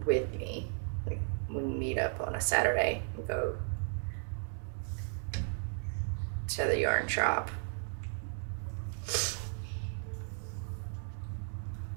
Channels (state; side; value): silent; left; 54 dB below the other